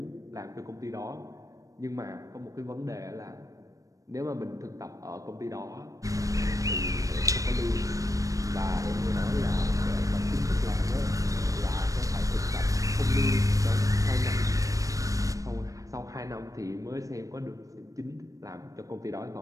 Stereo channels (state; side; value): late; left; 0.16 ms